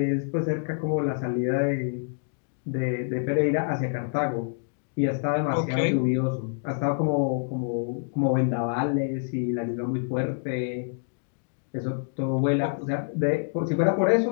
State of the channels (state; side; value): silent; right; digital silence